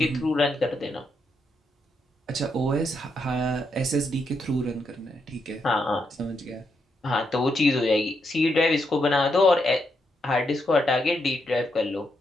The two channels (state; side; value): normal; both; correlation 0.80